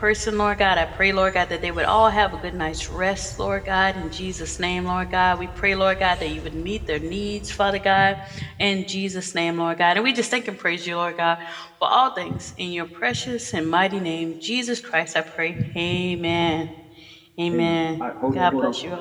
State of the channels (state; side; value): identical; both; correlation 1.00